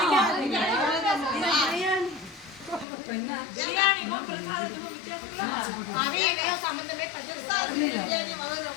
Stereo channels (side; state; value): right; drops out; at 2.9 s